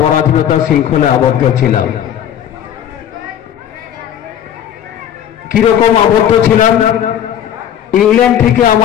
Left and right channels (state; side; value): quieter; right; 10.0 dB